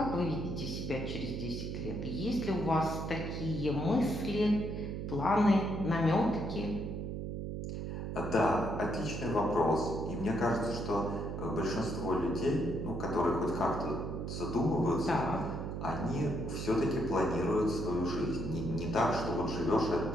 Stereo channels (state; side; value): noise; right; hum, 4 dB below the sound